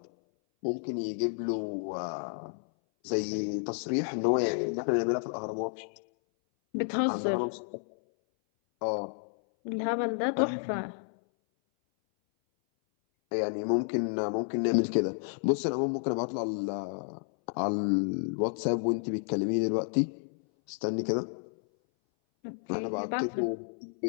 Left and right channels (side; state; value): right; silent; 57 dB below the other